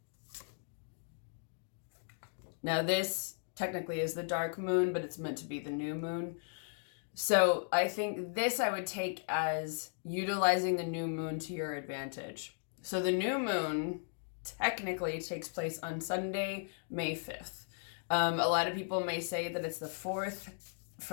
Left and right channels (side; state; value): right; silent; digital silence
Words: Now this technically is the dark moon, but it's meant to be the new moon. So I think this I would take as utilizing the new moon to your advantage. So the new moon technically takes place on Sunday, May 5th. A lot of people may say that it's the 4th.